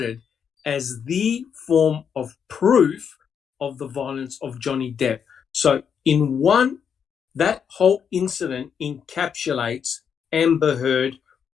as the form of proof of the violence of Johnny Depp. So in one, that whole incident encapsulates Amber Heard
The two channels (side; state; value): right; quieter; 7.3 dB